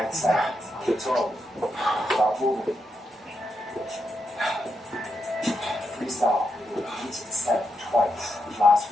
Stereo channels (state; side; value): normal; both; correlation 0.83